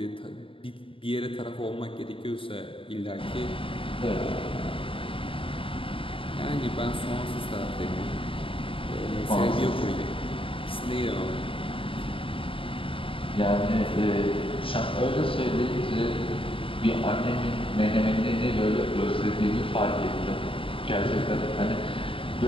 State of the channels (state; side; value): late; right; 0.26 ms